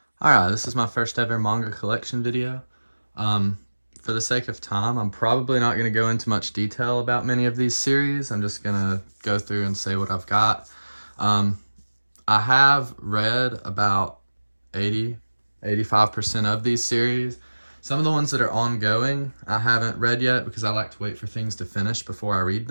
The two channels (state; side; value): inverted; both; correlation -1.00